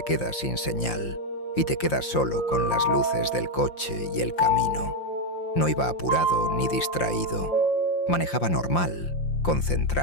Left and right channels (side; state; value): right; late; 5.8 ms